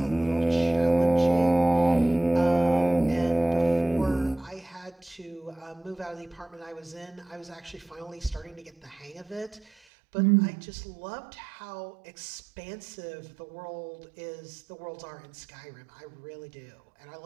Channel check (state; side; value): drops out; left; at 9.7 s